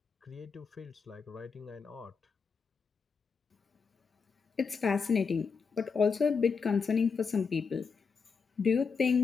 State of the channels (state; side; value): quieter; right; 5.4 dB